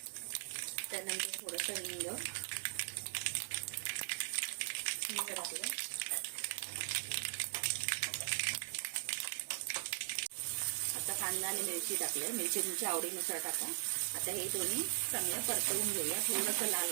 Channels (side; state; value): left; silent; digital silence